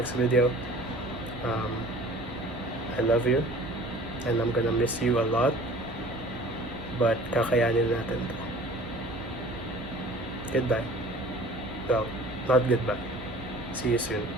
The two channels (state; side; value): noise; right; hum, 13 dB below the sound